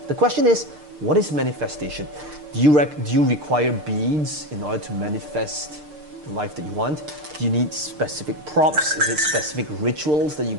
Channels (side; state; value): left; late; 6.6 ms